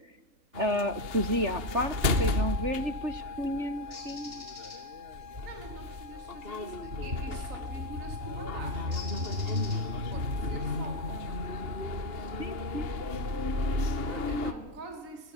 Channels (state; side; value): late; left; 2.9 ms